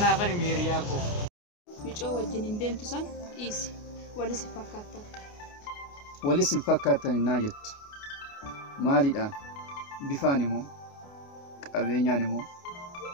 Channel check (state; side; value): late; right; 29 ms